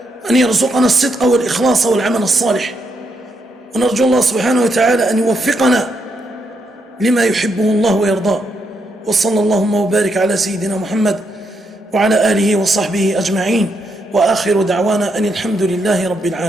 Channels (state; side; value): normal; both; correlation 0.79